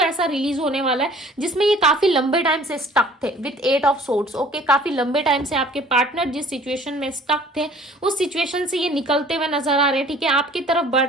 रिलीज होने वाला है जिसमें ये काफी लंबे टाइम से स्टक थे विथ 8 ऑफ सोर्ड्स। ओके, काफी लंबे टाइम से आपके पार्टनर जिस सिचुएशन में स्टक थे उस सिचुएशन से ये निकलते हुए नजर आ रहे हैं, ठीक है, आपकी तरफ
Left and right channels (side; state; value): both; normal; correlation 0.51